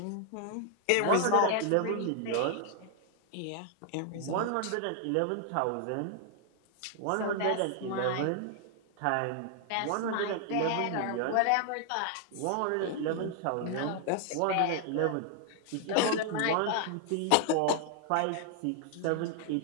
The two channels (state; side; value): different; both; correlation 0.00